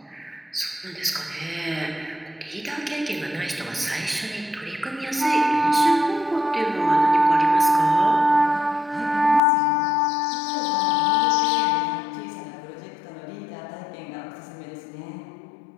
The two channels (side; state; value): right; drops out; at 9.4 s